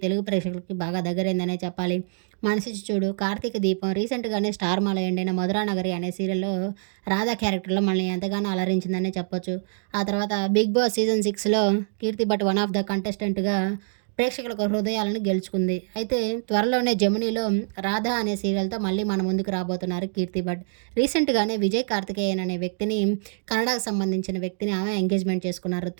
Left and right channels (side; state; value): left; silent; digital silence